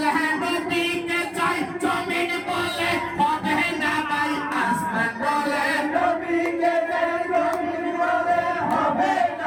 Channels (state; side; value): identical; both; correlation 1.00